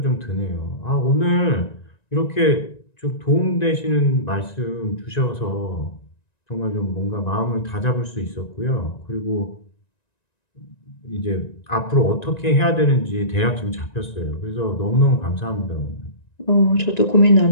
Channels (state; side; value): late; right; 1.9 ms